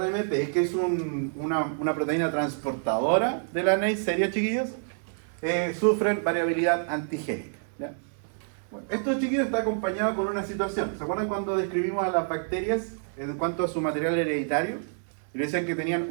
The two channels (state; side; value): silent; left; digital silence